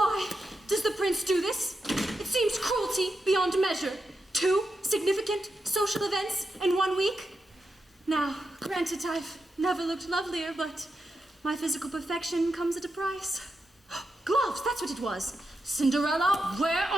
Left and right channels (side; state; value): both; normal; correlation 0.86